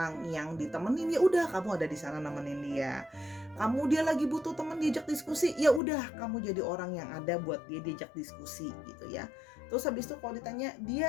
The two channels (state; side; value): drops out; right; at 5.8 s